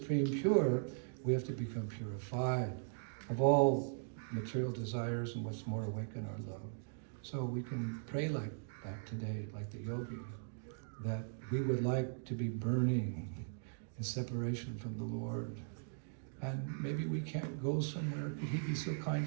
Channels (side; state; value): left; silent; digital silence